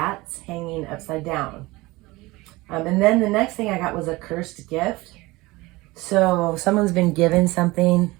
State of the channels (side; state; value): left; quieter; 21.3 dB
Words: hanging upside down. And then the next thing I got was a cursed gift. So someone's been given something